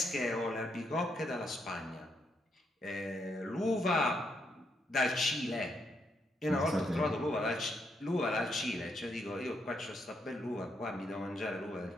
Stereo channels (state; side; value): normal; both; correlation 0.77